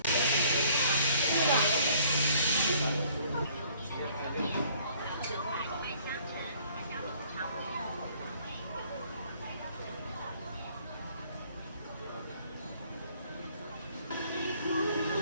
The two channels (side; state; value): both; inverted; correlation -0.59